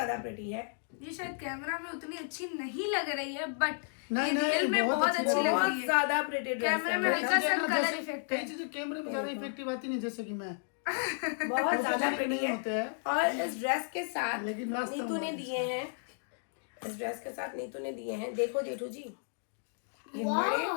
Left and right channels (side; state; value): right; silent; digital silence